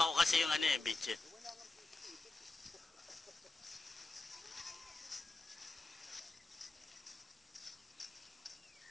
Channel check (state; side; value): quieter; right; 3.2 dB